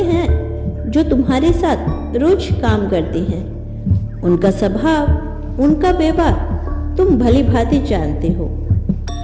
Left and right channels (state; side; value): identical; both; correlation 1.00